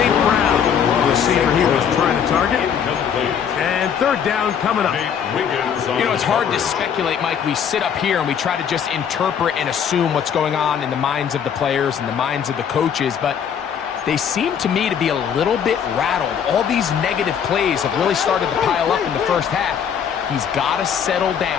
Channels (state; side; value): quieter; right; 7.9 dB